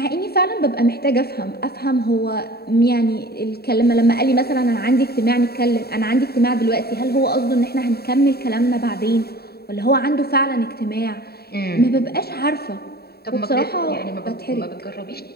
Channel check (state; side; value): late; right; 0.46 ms